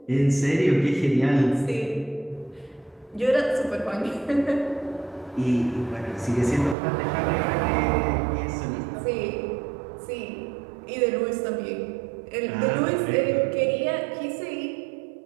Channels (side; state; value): left; drops out; at 6.8 s